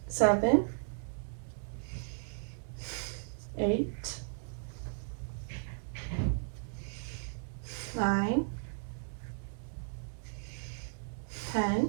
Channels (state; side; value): silent; left; digital silence